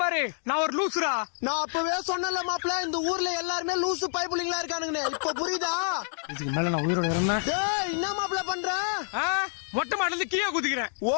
பாரு. நான் ஒரு லூசுரா. நான் அப்பவே சொன்னல மாப்பிள்ள, இந்த ஊர்ல எல்லாருமே லூசு பைப்புலிங்களா இருக்கானுங்க. இப்ப புரியுதா? இதுக்கு மேல நான் உயிரோட இருந்தேன். டேய் என்ன மாப்பிள்ள பண்ற? மொட்டை மாடில இருந்து கீழே குதிக்கிறேன். ஓ,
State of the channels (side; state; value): right; silent; 60 dB below the other